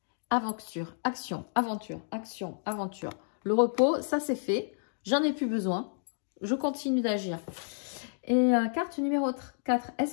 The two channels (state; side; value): silent; right; digital silence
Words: Aventure. Le repos, ça c'est fait. J'en ai plus besoin. Je continue d'agir. Et carte numéro 4. Est-ce